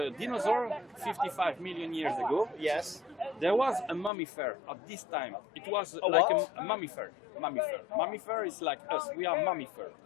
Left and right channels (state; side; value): drops out; right; at 4.1 s